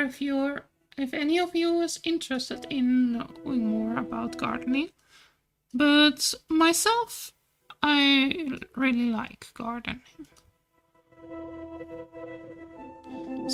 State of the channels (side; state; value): both; identical; correlation 1.00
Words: any of you is interested in knowing more about gardening, but myself, I really like gardening.